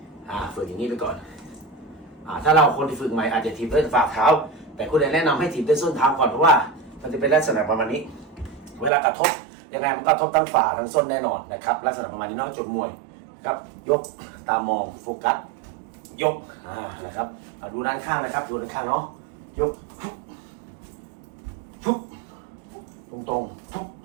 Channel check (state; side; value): drops out; left; at 8.9 s